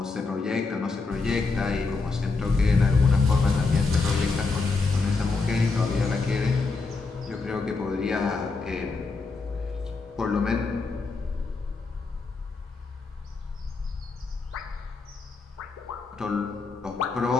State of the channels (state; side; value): quieter; right; 4.0 dB